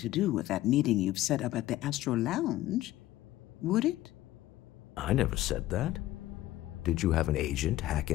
do with that meeting you've set up at the Astro Lounge, would it? I never said that. Did you have an agent hack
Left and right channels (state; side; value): quieter; right; 15.4 dB